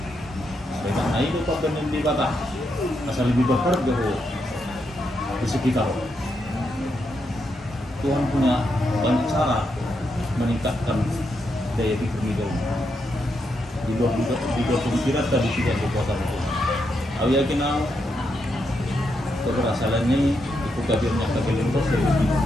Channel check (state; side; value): normal; both; correlation 0.81